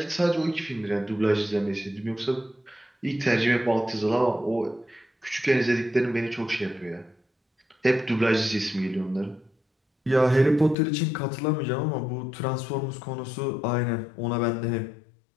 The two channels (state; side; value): drops out; right; at 10.8 s